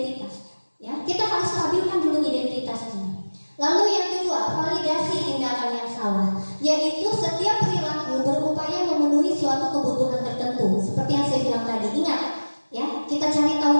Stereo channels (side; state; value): both; inverted; correlation -1.00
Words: Ya, kita harus stabilkan dulu identitasnya. Lalu yang kedua, validasi tindakan yang salah, yaitu setiap perilaku berupaya memenuhi suatu kebutuhan tertentu. Seperti yang saya bilang tadi, ingat, ya, kita cari tahu